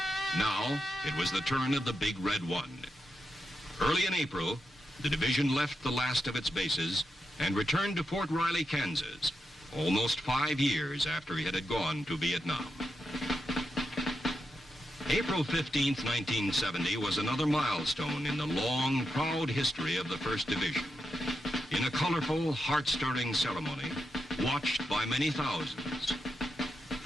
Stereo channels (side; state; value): both; normal; correlation 0.86